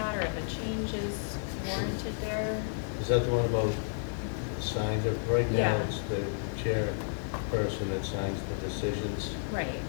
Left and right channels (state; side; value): silent; right; digital silence